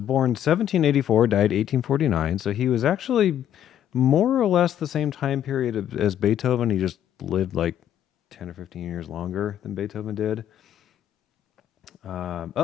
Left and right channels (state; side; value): quieter; right; 10.5 dB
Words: 1784, died 1849. So he was actually more or less the same time period as Beethoven. He just lived like 10 or 15 years longer than Beethoven did.